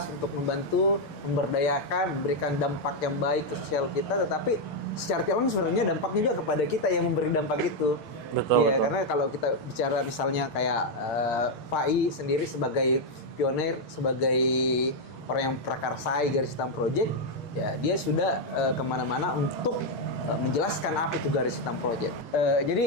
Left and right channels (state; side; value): late; right; 6.6 ms